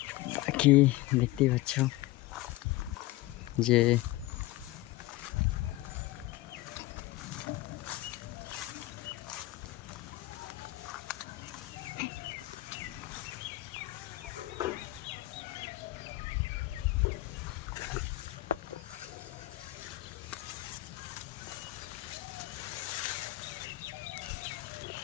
বাকি দেখতেই পাচ্ছ যে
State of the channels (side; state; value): right; quieter; 18.1 dB